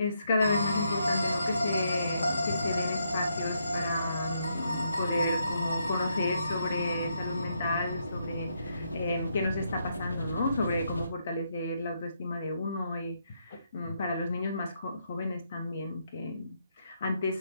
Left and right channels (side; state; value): both; inverted; correlation -0.78